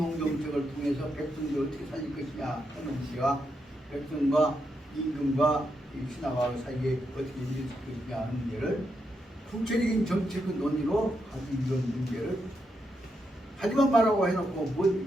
통해서 백성들 어떻게 살릴 것이냐 하는 것이가 백성과 임금과 신하와 사이에 어떻게 이루어질 것이냐 하는 문제를 구체적인 정책의 논의로 가지고 이런 문제를 하지만 말라고 해놓고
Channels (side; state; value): both; normal; correlation 0.83